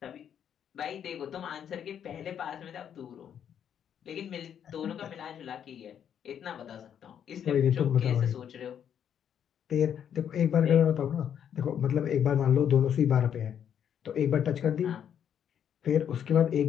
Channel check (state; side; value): quieter; right; 8.9 dB